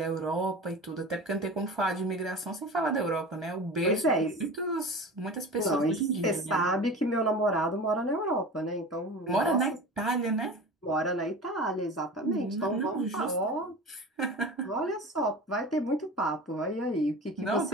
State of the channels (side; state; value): both; normal; correlation 0.34